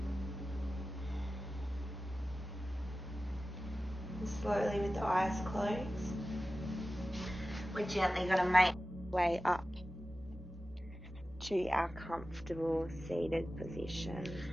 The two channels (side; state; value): both; normal; correlation 0.95